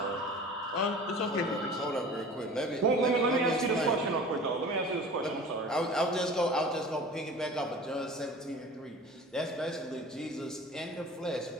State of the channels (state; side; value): normal; both; correlation 0.41